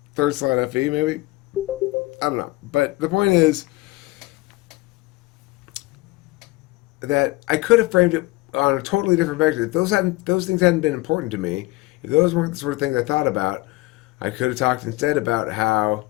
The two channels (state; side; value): quieter; right; 20.8 dB